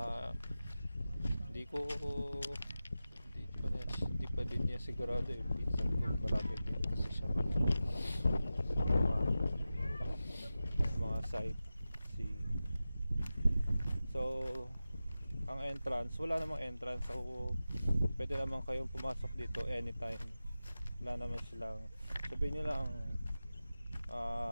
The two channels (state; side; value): inverted; both; correlation -0.94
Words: hindi pa din niya sigurado yung pinsan ko, marami din kasi siya mga sightseeing. So ang entrance, wala namang entrance, so pwede naman kayong pumasok dito anytime. Wala naman silang, sabihin nyo lang